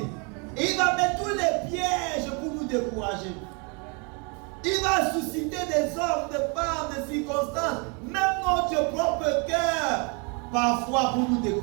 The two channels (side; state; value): left; quieter; 33.8 dB